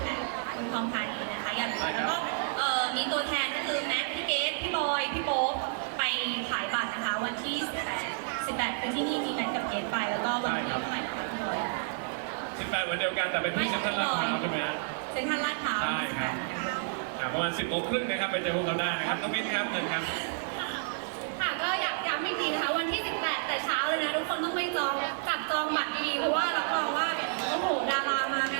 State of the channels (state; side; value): silent; left; digital silence